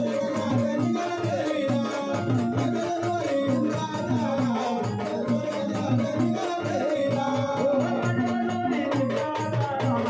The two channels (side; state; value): both; identical; correlation 1.00